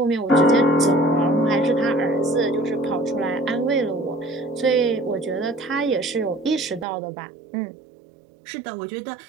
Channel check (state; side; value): drops out; left; at 6.9 s